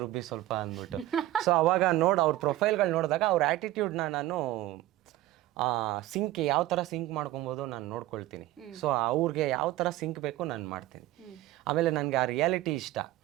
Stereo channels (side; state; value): left; quieter; 15.9 dB